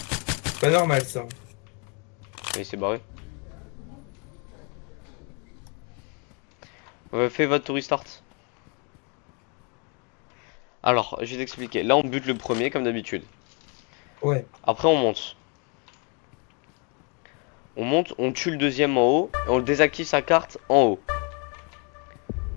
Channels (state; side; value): quieter; right; 35.4 dB